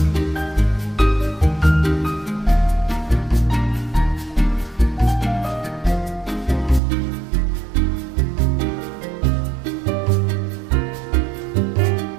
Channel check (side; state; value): left; drops out; at 6.8 s